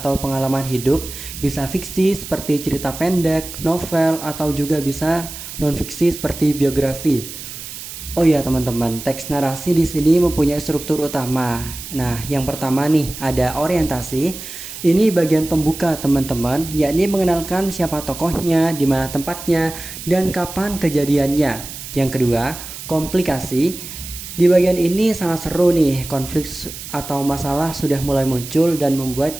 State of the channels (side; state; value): right; noise; hiss, 11 dB below the sound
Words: pengalaman hidup, bisa fiksi seperti cerita pendek, novel, atau juga bisa non-fiksi seperti biografi. Oh iya teman-teman, teks narasi di sini mempunyai struktur utama. Nah, yang pertama nih ada orientasi. Ini bagian pembuka teman-teman, yakni mengenalkan siapa tokohnya, di mana tempatnya, dan kapan kejadiannya. Yang kedua, komplikasi. Di bagian ini sangat seru nih, konflik atau masalah sudah mulai muncul dan